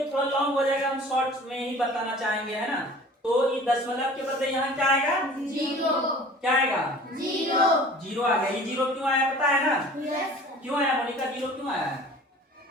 थोड़ा लॉन्ग हो जाएगा, हम शॉर्ट में ही बताना चाहेंगे, है ना। तो ये दशमलव के बदले यहाँ क्या आएगा? जीरो। क्या आएगा? जीरो आ गया। ये जीरो क्यों आया पता है ना? क्यों आया मोनिका? जीरो क्यों आया?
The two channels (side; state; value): both; normal; correlation 0.45